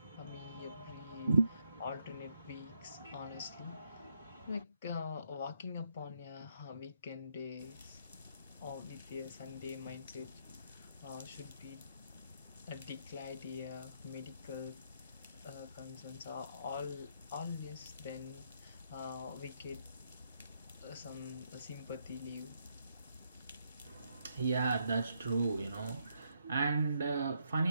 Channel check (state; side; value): inverted; both; correlation -0.76